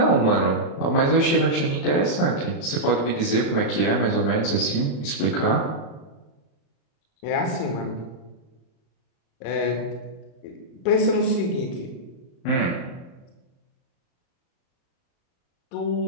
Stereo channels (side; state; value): right; late; 35 ms